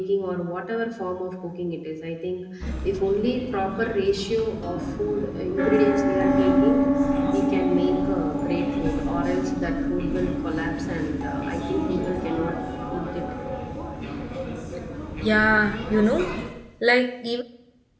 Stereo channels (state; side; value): identical; both; correlation 1.00